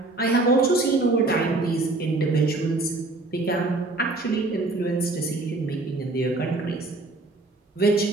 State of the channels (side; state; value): left; quieter; 3.1 dB